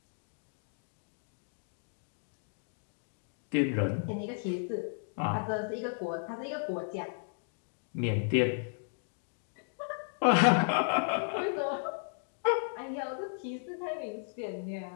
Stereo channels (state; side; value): silent; right; digital silence